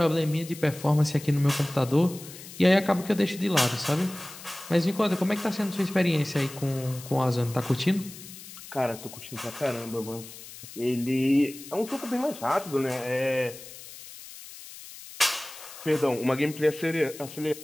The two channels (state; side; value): noise; left; hiss, 15 dB below the sound